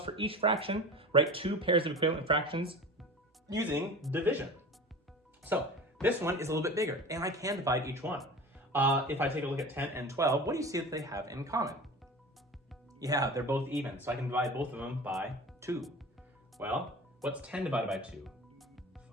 for each fraction, write 2 pairs of equivalent fractions using division. So this one is a little bit bigger, and I can divide each one. If I take a look at 10 and 12, what do you see that they have in common? Yeah, they're both even, so I can divide both of them by 2. Well, what's 10 divided by 2?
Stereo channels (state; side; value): normal; both; correlation 0.35